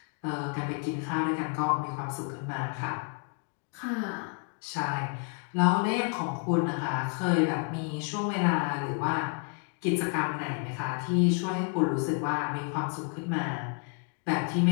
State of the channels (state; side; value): quieter; right; 39.3 dB